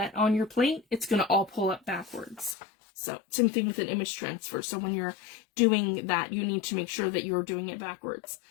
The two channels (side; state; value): right; drops out; at 2.6 s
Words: on your plate, it's going to all pull up backwards. So same thing with an image transfer. So when you're doing that, you need to make sure that you're doing it backwards.